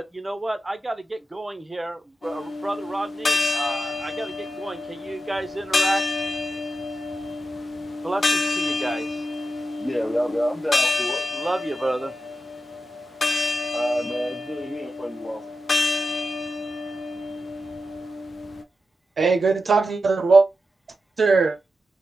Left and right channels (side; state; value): both; normal; correlation 0.90